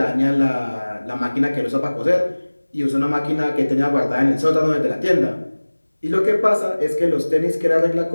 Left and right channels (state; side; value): inverted; both; correlation -1.00